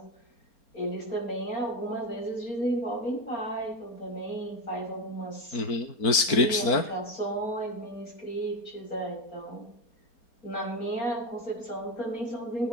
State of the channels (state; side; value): late; right; 4.3 ms